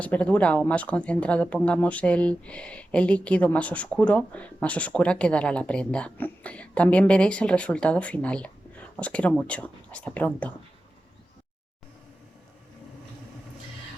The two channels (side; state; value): both; normal; correlation 0.93